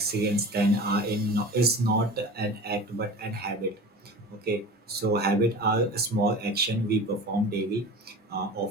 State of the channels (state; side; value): normal; both; correlation 0.36